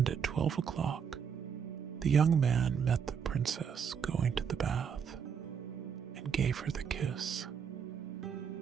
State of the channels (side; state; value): left; quieter; 7.1 dB